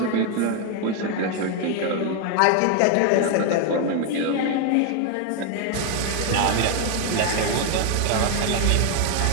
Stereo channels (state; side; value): different; both; correlation 0.01